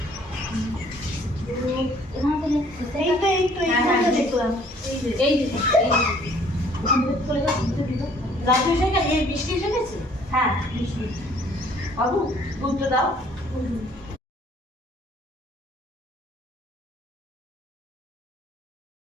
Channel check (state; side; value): normal; both; correlation 0.58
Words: রাজু এসে গেছে, এই বৃষ্টি এসে গেছে, হ্যাঁ বৃষ্টি। বাবু দুধটা দাও।